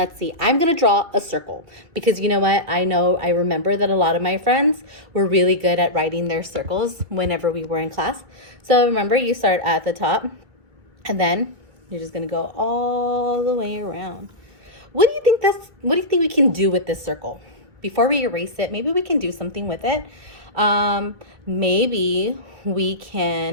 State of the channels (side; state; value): left; late; 2.0 ms